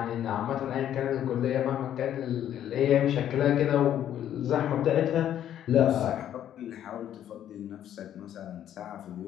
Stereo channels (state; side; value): quieter; right; 10.8 dB